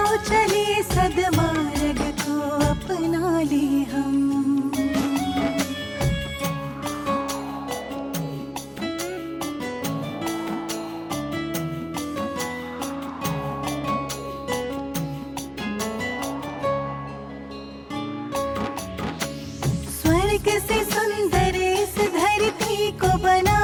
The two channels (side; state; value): both; identical; correlation 1.00